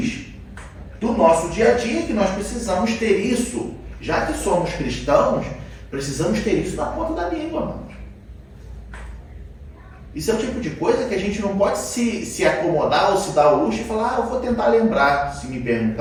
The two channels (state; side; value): identical; both; correlation 1.00